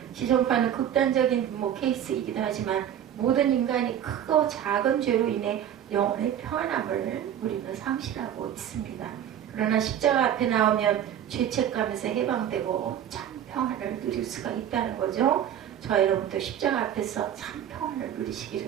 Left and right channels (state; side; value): quieter; left; 10.0 dB